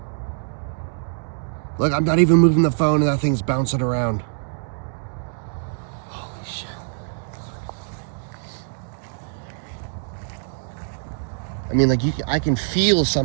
Look, I'm not even moving the phone and that thing's bouncing around. Holy shit. I mean, like, I can feel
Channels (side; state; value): left; silent; digital silence